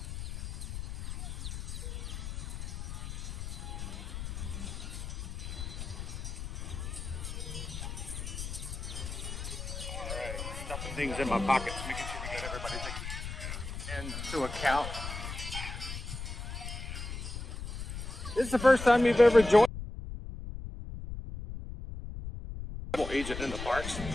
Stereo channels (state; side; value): noise; left; rumble, 6 dB below the sound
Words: things in my pockets, making sure we get everybody taken into account. This is the first time you've ever joined a travel agent in the parks.